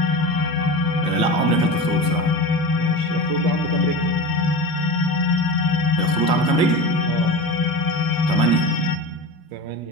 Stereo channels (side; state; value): both; normal; correlation 0.28